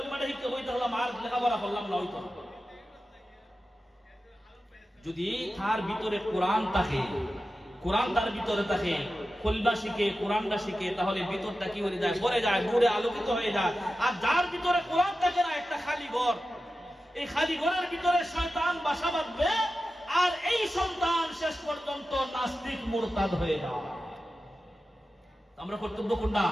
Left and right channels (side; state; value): both; normal; correlation 0.93